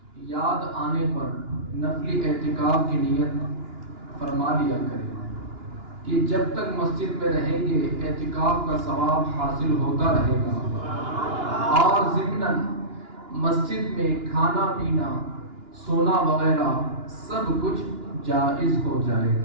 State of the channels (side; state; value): left; late; 2.9 ms